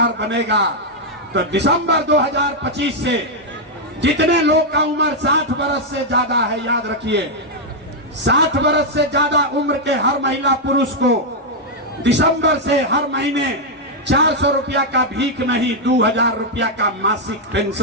बनेगा तो दिसंबर 2025 से जितने लोग का उम्र 60 वर्ष से ज्यादा है, याद रखिए 60 वर्ष से ज्यादा उम्र के हर महिला पुरुष को दिसंबर से हर महीने 400 रुपया का भीख नहीं, 2000 रुपया का मासिक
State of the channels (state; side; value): normal; both; correlation -0.02